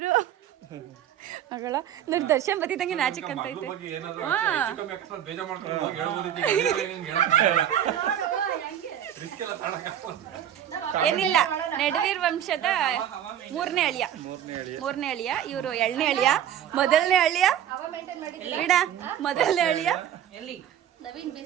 ಮಗಳ ನೋಡಿ. ದರ್ಶನ್ ಬತ್ತಿದಂಗೆ ನಾಚಿಕ್ ಅಂತ ಐತೆ. ಬೇಜಾರ್ ಮಾಡ್ಕೊಂಡು ಏನಿಲ್ಲ, ನಡುವೀರ್ ವಂಶದ ಮೂರನೇ ಅಳಿಯ. ಇವರು 2ನೇ ಅಳಿಯ. ಮೊದಲನೇ ಅಳಿಯ ಬಿಡ, ಮೊದಲನೇ ಅಳಿಯ ನವೀನ್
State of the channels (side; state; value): left; quieter; 10.3 dB